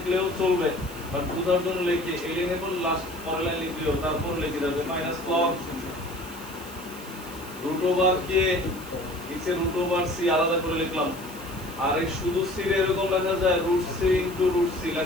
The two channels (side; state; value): left; noise; hiss, 18 dB below the sound